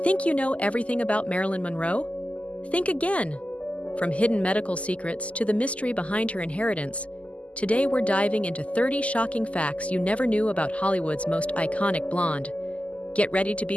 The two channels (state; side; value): late; right; 0.065 ms